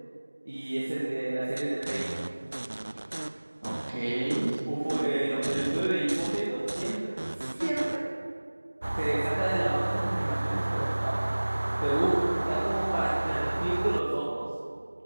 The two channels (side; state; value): both; inverted; correlation -1.00